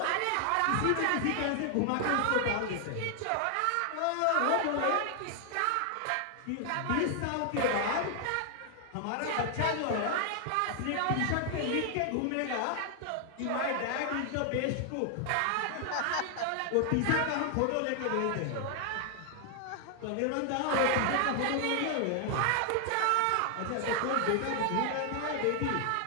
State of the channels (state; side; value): different; both; correlation 0.00